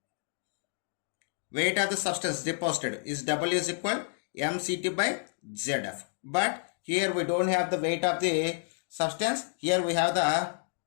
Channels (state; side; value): silent; right; 58 dB below the other